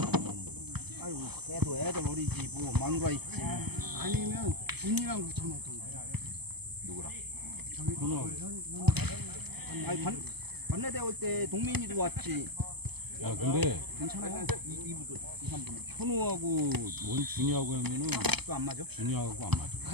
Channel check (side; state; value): left; late; 0.97 ms